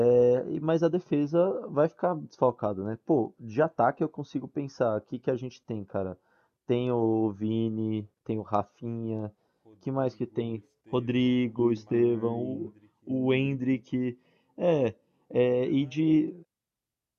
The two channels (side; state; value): both; identical; correlation 1.00